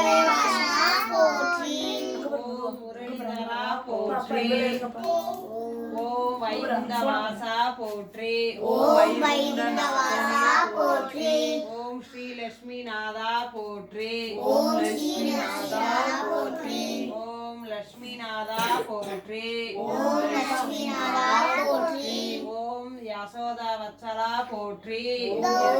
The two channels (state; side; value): identical; both; correlation 1.00